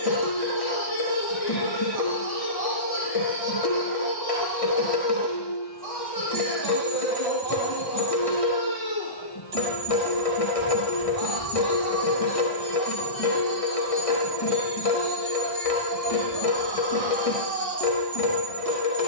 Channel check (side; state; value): right; late; 1.6 ms